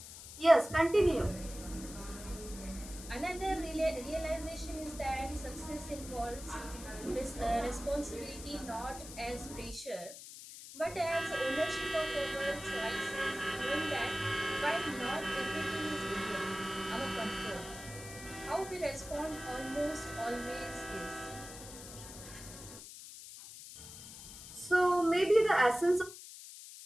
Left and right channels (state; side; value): noise; left; hiss, 13 dB below the sound